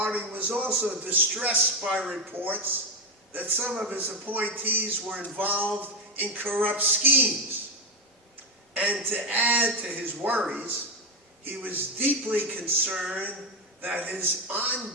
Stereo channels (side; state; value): both; normal; correlation 0.09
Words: was also distressed by reports that some of his appointees were involved in corrupt schemes. And to add to his worries, he was deeply concerned that his